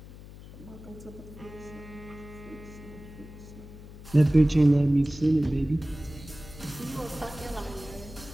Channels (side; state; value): left; noise; hum, 16 dB below the sound